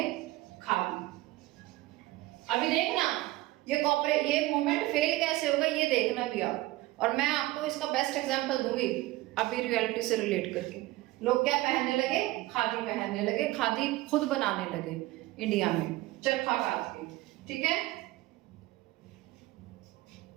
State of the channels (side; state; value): left; quieter; 18.4 dB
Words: खादी। अभी देखना ये मूवमेंट फेल कैसे होगा, ये देखना भी आप। और मैं आपको इसका बेस्ट एग्जांपल दूंगी अभी रियलिटी से रिलेट करके। लोग क्या पहनने लगे? खादी पहनने लगे, खादी खुद बनाने लगे इंडिया में, चरखा काट के, ठीक है।